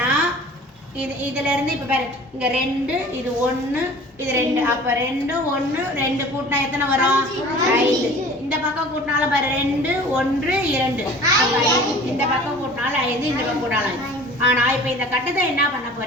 இதிலேருந்து இப்போ பாரு, இங்கே 2, இது 1, இது 2, அப்போ 2 1 2 கூட்டினா எத்தனை வரும்? 5. இந்த பக்கம் கூட்டினாலும் பாரு 2 1 2, இந்த பக்கம் கூட்டினாலும் 5, இந்த பக்கம் கூட்டினாலும் 5. ஆனால் இப்போ இந்த கட்டத்தை என்ன பண்ண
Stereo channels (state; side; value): normal; both; correlation 0.45